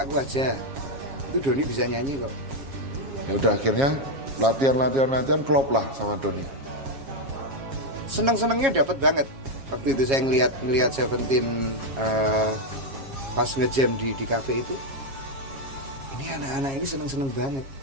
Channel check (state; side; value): late; left; 7.4 ms